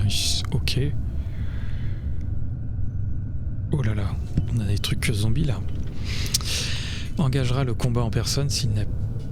Ok. Oh là là, on a des trucs zombies là. Engagera le combat en personne s'il n'a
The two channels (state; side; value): identical; both; correlation 1.00